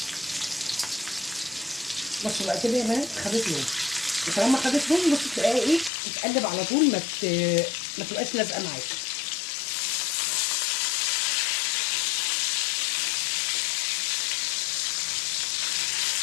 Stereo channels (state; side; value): drops out; right; at 5.9 s